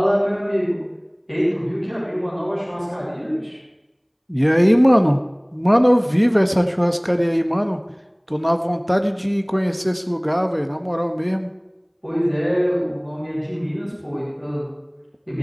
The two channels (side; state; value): both; identical; correlation 1.00